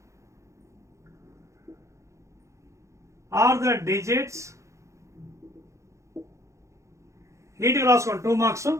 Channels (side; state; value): left; late; 0.15 ms